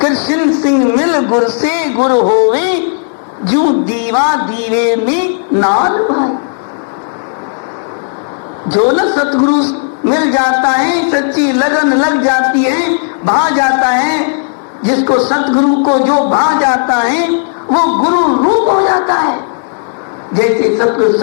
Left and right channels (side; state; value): right; silent; digital silence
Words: सिंह मिल गुरु से गुरु होवे, जू दीवा दीवे में नाल भाई। जो न सतगुरु मिल जाता है, सच्ची लगन लग जाती है, भा जाता है, जिसको सतगुरु को जो भा जाता है वो गुरु रूप हो जाता है। जैसे सतगुरु